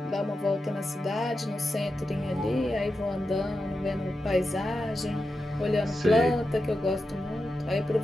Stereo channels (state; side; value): normal; both; correlation 0.89